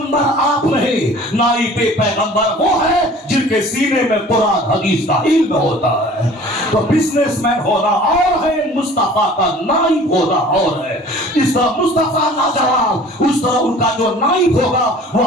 آپ نہیں, نائب پیغمبر وہ ہے جن کے سینے میں قرآن حدیث کا علم ہوتا ہے. تو بزنس مین ہونا اور ہے, مصطفیٰ کا نائب ہونا اور ہے. اس طرح مصطفیٰ لاجواب, اس طرح ان کا جو نائب ہوگا وہ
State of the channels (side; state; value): both; normal; correlation 0.47